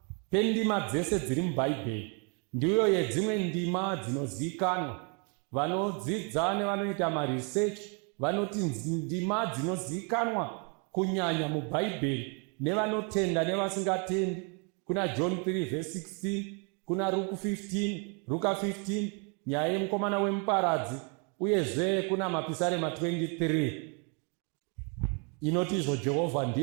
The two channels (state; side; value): quieter; left; 36.1 dB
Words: pendima dzese dziri mubhaibheri ndiyo yedzimwe ndima dzinozivikanwa. Vanodzidza nevanoita maresearch vanoti ndima dzinozivikanwa kunyanya mubhaibheri nevanotenda nevasingatendi. Kuna John 3 verse 16, kuna Luka 15, nyaya yemukomana wemuparadzi, uyezve kuna mapisarema 23 inoti izvo, Jehovha